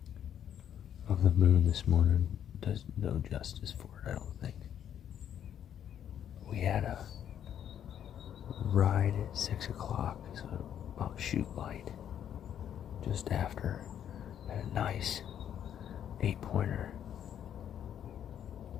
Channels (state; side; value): quieter; right; 9.7 dB